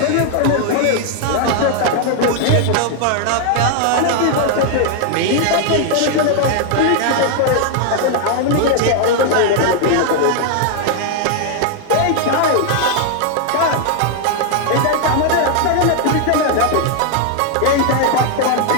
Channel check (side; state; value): both; different; correlation 0.00